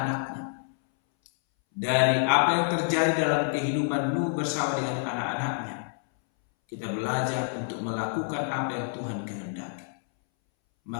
Dari apa yang terjadi dalam kehidupan Nuh bersama dengan anak-anaknya, kita belajar untuk melakukan apa yang Tuhan kehendaki.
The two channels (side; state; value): right; silent; 60 dB below the other